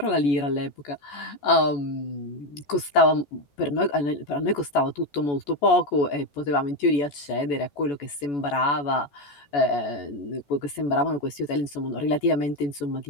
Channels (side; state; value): right; late; 14 ms